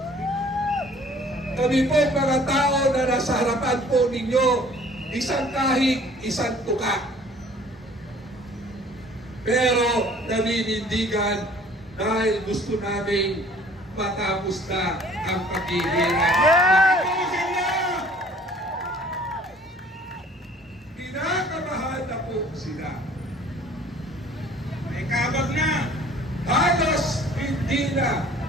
Kami po mga tao na nasa harapan po ninyo, isang kahig, isang tuka. Pero naninindigan dahil gusto namin matapos na ang paghihirap. Kinakabahan na po sila. May kabag na. Halos hindi na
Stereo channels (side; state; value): both; normal; correlation 0.53